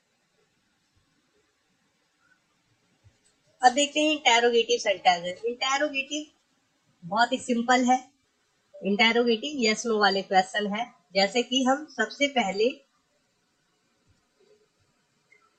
अब देखते हैं इंटेरोगेटिव सेंटेंसेस। इंटेरोगेटिव बहुत ही सिंपल है। इंटेरोगेटिव यस नो वाले क्वेश्चन है। जैसे कि हम सबसे पहले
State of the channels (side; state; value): both; identical; correlation 1.00